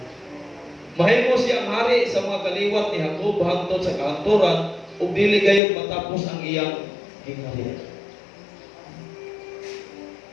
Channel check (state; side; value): drops out; right; at 5.6 s